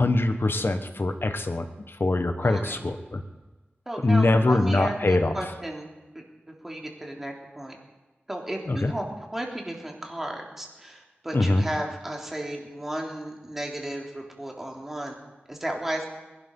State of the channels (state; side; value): normal; both; correlation 0.93